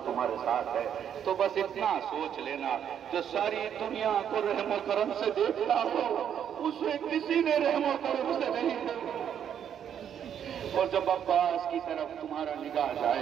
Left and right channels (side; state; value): left; quieter; 8.9 dB